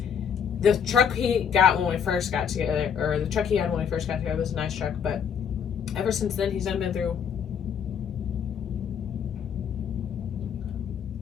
the truck he got when we first got together, or the truck he had when we first got together was a nice truck, but ever since then, he's done been through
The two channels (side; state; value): right; quieter; 7.6 dB